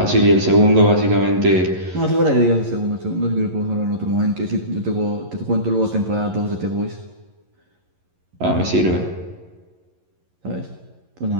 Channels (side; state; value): left; late; 11 ms